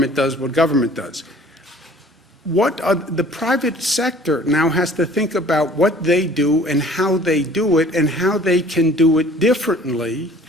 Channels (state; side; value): normal; both; correlation 0.51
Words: does, the private sector now has to think about what they do and how they do it and how they can do it differently